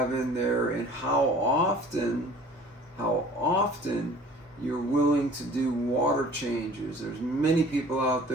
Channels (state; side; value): normal; both; correlation 0.48